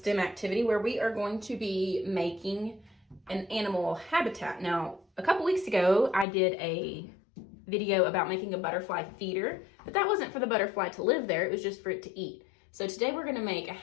activity where we are going to be making an animal habitat. Now, a couple weeks ago, I did a video about making a butterfly feeder, but that wasn't for the butterfly to live there, it was just for it to eat. So today we're gonna make a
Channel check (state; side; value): drops out; right; at 6.2 s